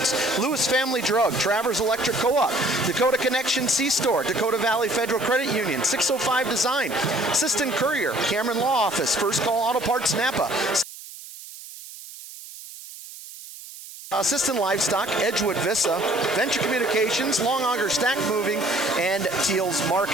Lewis Family Drug, Travers Electric Co-op, Dakota Connection C-Store, Dakota Valley Federal Credit Union, 605 Design, Sisseton Courier, Cameron Law Office, First Call Auto Parts Napa, Sisseton Livestock, Edgewood Vista, Venture Communications, Long Auger Stack Moving, and Teals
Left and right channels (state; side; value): noise; right; hiss, 15 dB below the sound